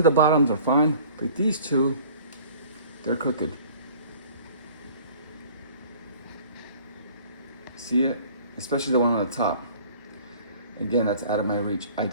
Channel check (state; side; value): inverted; both; correlation -0.50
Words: the bottoms are fine, but these two, they're crooked. See it? Especially the one on the top. Again, that's out of my reach. I